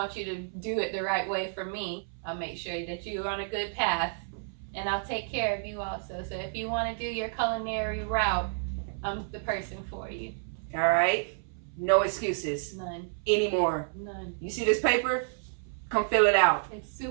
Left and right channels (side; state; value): left; silent; 57 dB below the other